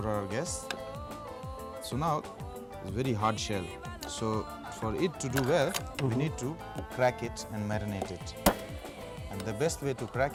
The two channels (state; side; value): identical; both; correlation 1.00